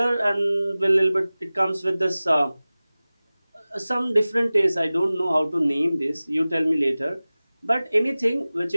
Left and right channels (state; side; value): inverted; both; correlation -0.98